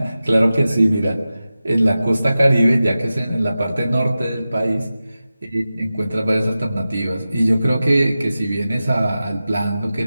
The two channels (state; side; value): inverted; both; correlation -0.94